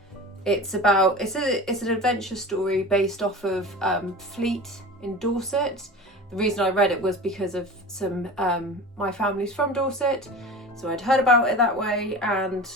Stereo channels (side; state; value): both; normal; correlation 0.34